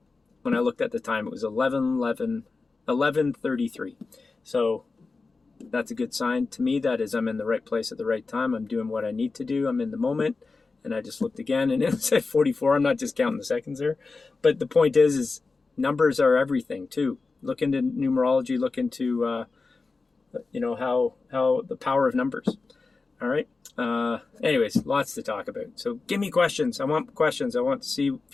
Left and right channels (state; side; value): quieter; right; 4.0 dB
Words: when I looked at the time, it was 11:33. So that's a good sign to me. That is, I'm in the right place at the right time. I'm doing what I need to do. I'm in the moment. And I just looked again, and it said 44. I'm not just counting the seconds there. But the point is numbers are everything, too. Look into numerology. Look into, how the power of numbers. All right. Anyways, lots to talk about. So give me questions. I want questions. I want to see